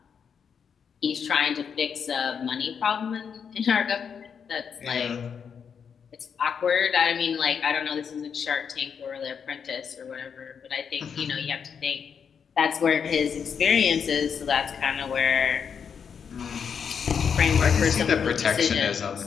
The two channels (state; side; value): quieter; right; 6.9 dB